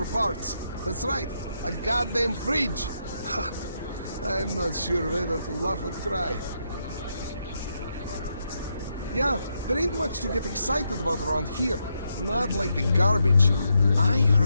parts? That's right, a goddamn fridge. I'm not sure whether to laugh or cry. Yeah, there ain't much to get excited about around here. Not like the garbage. I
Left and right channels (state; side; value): inverted; both; correlation -0.81